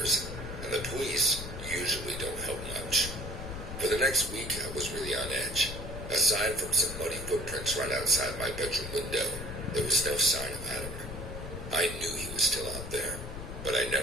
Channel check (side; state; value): left; noise; rumble, 8 dB below the sound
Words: and the police usually don't help much. For the next week, I was really on edge. Aside from some muddy footprints right outside my bedroom window, there was no sign of Adam. I knew he was still out there, but I